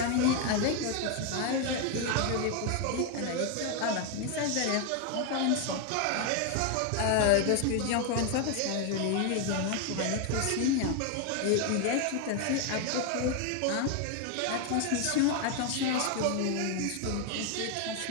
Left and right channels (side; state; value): both; different; correlation 0.01